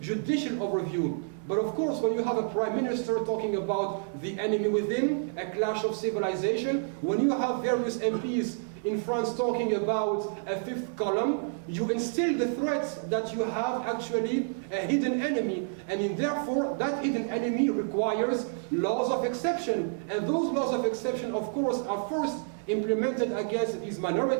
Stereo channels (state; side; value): silent; left; 58 dB below the other